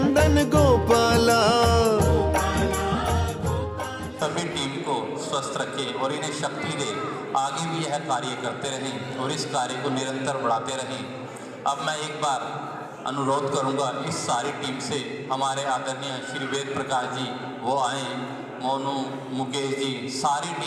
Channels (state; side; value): identical; both; correlation 1.00